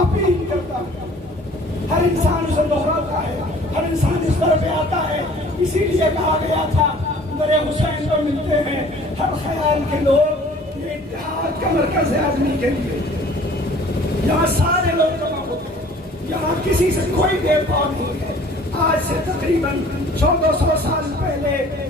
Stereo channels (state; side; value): normal; both; correlation 0.51